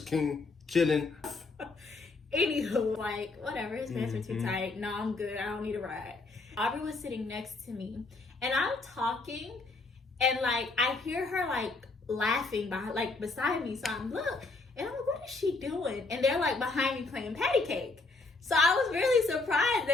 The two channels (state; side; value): quieter; right; 3.6 dB